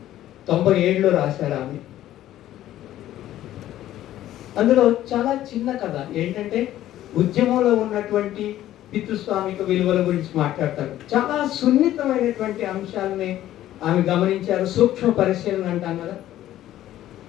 రాశారు ఆమె. అందులో చాలా చిన్న కథ ఏంటంటే ఉద్యమంలో ఉన్నటువంటి పితృస్వామిక విలువల గురించి మాట్లాడతారు. చాలా సున్నితమైనటువంటి అంశాలని ఆమె గమనించారు. సూక్ష్మ పరిశీలన అంటాం కదా.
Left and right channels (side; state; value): right; quieter; 13.3 dB